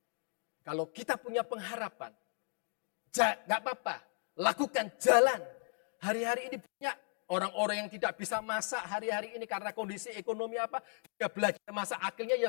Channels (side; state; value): right; silent; 54 dB below the other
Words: Kalau kita punya pengharapan, gak apa-apa. Lakukan jalan. Hari-hari ini banyak orang-orang yang tidak bisa masak hari-hari ini karena kondisi ekonomi apa. Dia belajar masak akhirnya